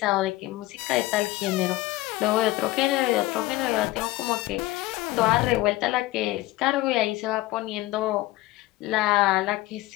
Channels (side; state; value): right; quieter; 18.2 dB